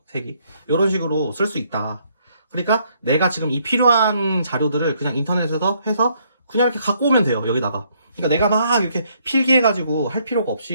색이. 이런 식으로 쓸 수 있다. 그러니까 내가 지금 이 필요한 자료들을 그냥 인터넷에서 해서 그냥 이렇게 갖고 오면 돼요, 여기다가. 그러니까 내가 막 이렇게 필기해가지고 할 필요가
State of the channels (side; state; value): both; inverted; correlation -0.69